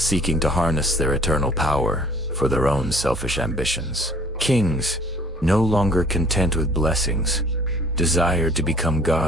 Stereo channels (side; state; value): both; normal; correlation 0.55